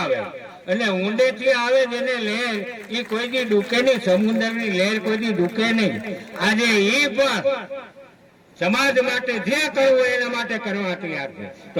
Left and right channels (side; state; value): both; identical; correlation 1.00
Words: અને ઊંડેથી આવે જેને લહેર એ કોઈ દી ડૂકે નહીં, સમુદ્રની લહેર કોઈ દી ડૂકે નહીં. આજે એ પણ સમાજ માટે જે કરવું એના માટે કરવા તૈયાર છે. તો